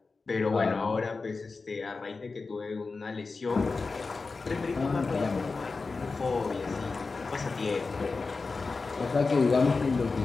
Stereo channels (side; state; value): right; quieter; 4.1 dB